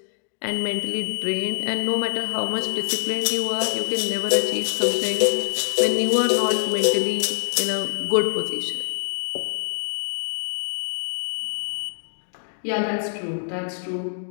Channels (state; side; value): silent; right; digital silence